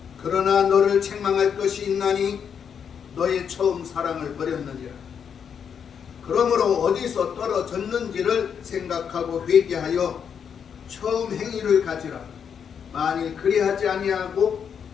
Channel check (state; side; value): quieter; right; 7.4 dB